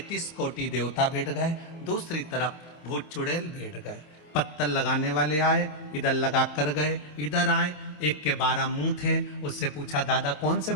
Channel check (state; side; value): late; right; 27 ms